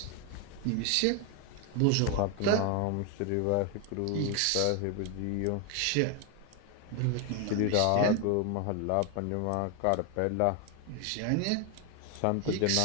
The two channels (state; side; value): different; both; correlation 0.01